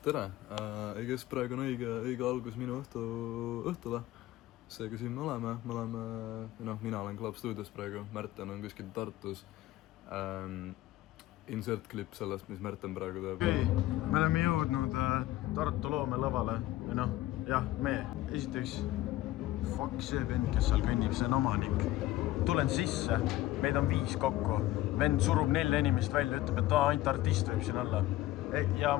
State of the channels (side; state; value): right; quieter; 15.9 dB